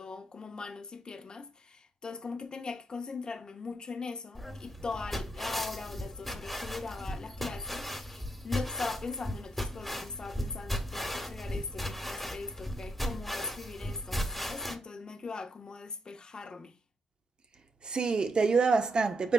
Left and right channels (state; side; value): normal; both; correlation 0.81